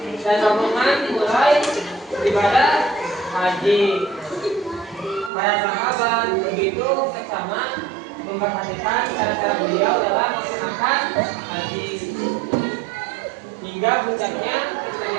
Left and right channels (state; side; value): drops out; left; at 5.3 s